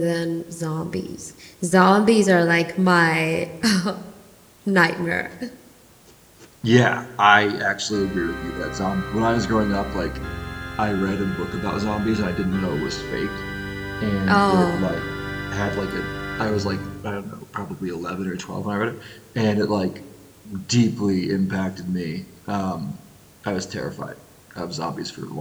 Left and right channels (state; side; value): identical; both; correlation 1.00